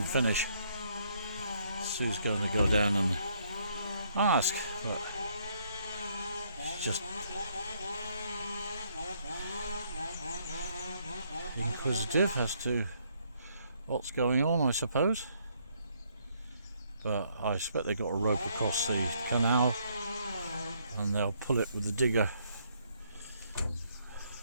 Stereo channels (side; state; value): both; inverted; correlation -0.70